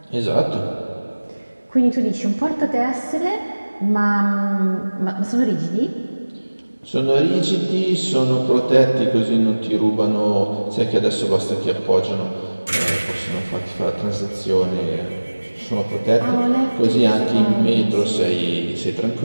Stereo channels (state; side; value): inverted; both; correlation -1.00